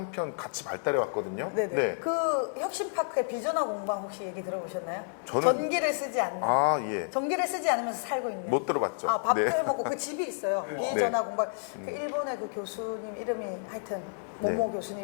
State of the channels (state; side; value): silent; right; digital silence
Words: 같이 발달해 왔거든요. 네네. 네. 그 혁신파크의 비전화 공방 혹시 얘기 들어보셨나요? 저는- 전기를 쓰지 않는. 아, 예. 전기를 쓰지 않으면서 살고 있는. 못 들어봤죠. 밥도 네. 해먹고 그 집이 있어요. 비전화 공방. 그 일본의 그 교수님 이름이 하여튼 모모 네.